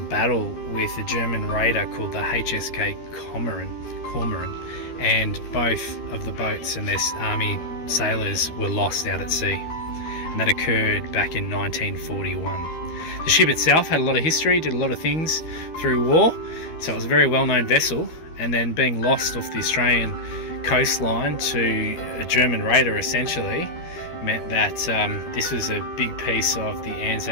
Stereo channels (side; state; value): right; late; 13 ms